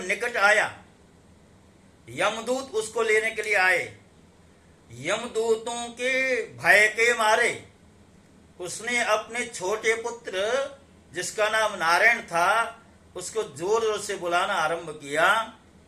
निकट आया, यमदूत उसको लेने के लिए आए। यमदूतों के भय के मारे उसने अपने छोटे पुत्र, जिसका नाम नारायण था, उसको जोर जोर से बुलाना आरंभ किया।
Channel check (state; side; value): identical; both; correlation 1.00